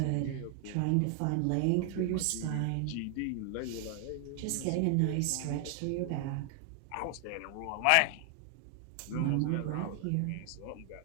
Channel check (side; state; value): both; different; correlation 0.00